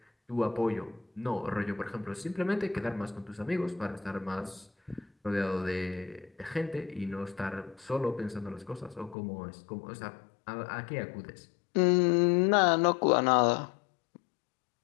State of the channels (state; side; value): drops out; right; at 9.2 s